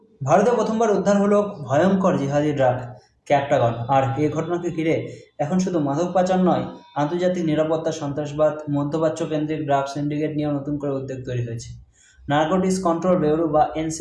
ভারতে প্রথমবার উদ্ধার হলো ভয়ঙ্কর জিহাদি ড্রাগ ক্যাপটাগন। আর এই ঘটনাকে ঘিরে এখন শুধু মাদক পাচার নয়, আন্তর্জাতিক নিরাপত্তা, সন্ত্রাসবাদ, মধ্যপ্রাচ্য কেন্দ্রিক ড্রাগ সিন্ডিকেট নিয়েও নতুন করে উদ্বেগ তৈরি হয়েছে। নার্কোটিক্স কন্ট্রোল ব্যুরো বা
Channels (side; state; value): both; identical; correlation 1.00